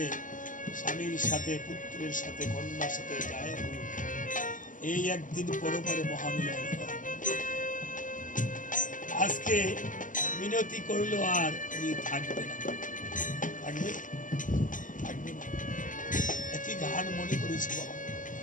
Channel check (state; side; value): late; right; 0.38 ms